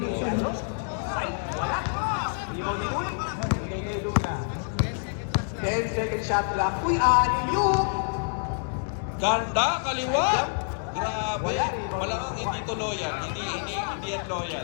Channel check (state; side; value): silent; right; 60 dB below the other